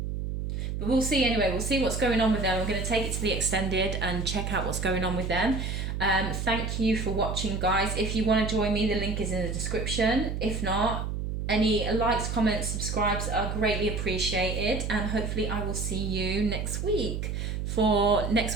But we'll see anyway. We'll see what's going on with them. I'm going to take it to the extended and check out what's going on with them. Thank you for watching, guys. If you want to join me, the link is in the description. If not, any likes, comments, subscribes are greatly appreciated. And hopefully I will see you next week for next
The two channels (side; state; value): right; noise; hum, 3 dB below the sound